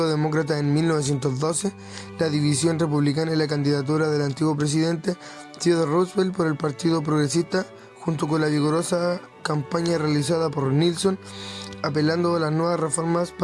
Demócrata en 1912, la división republicana y la candidatura del antiguo presidente Theodore Roosevelt por el Partido Progresista, junto con la vigorosa campaña realizada por Nixon, apelando a las nuevas reformas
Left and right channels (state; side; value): identical; both; correlation 1.00